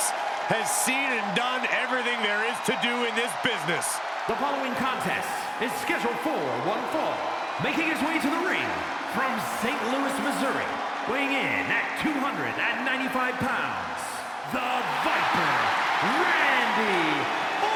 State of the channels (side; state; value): both; identical; correlation 1.00